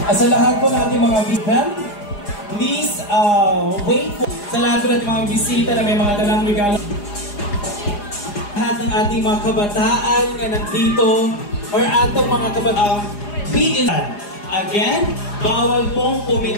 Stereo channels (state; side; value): late; right; 4.9 ms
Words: Sa lahat po natin mga bigman, please wait po. Sa lahat po natin mga bisita na may mga dalang regalo. Lahat ng ating mga kabataan na nandito or atong mga kabataan, again, bawal pong